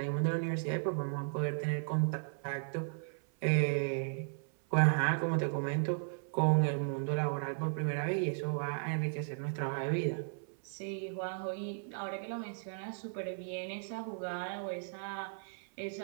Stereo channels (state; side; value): silent; left; 54 dB below the other